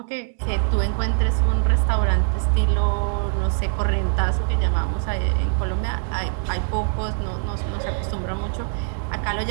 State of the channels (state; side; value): silent; left; 64 dB below the other